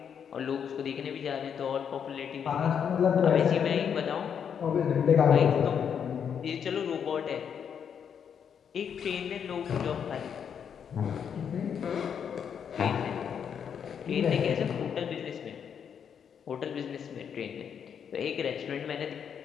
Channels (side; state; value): right; quieter; 7.7 dB